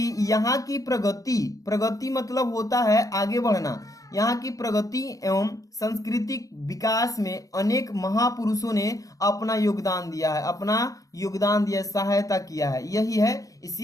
यहाँ की प्रगति मतलब होता है आगे बढ़ना, यहाँ की प्रगति एवं सांस्कृतिक विकास में अनेक महापुरुषों ने अपना योगदान दिया है, सहायता किया है, यही है,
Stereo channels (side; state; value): right; late; 0.17 ms